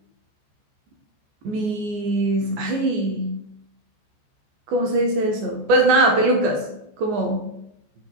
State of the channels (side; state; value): left; late; 14 ms